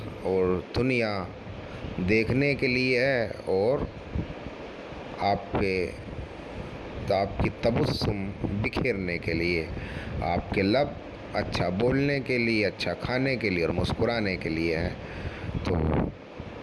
और दुनिया देखने के लिए है, और आपकी तबस्सुम बिखेरने के लिए, आपके लब अच्छा बोलने के लिए, अच्छा खाने के लिए और मुस्कुराने के लिए है। तो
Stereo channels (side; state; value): both; identical; correlation 1.00